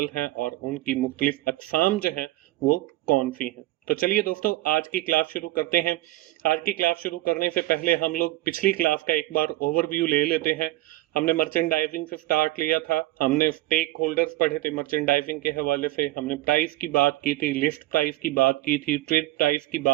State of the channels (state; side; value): quieter; left; 17.4 dB